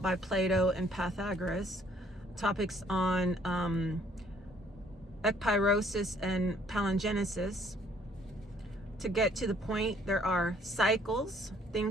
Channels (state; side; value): normal; both; correlation 0.62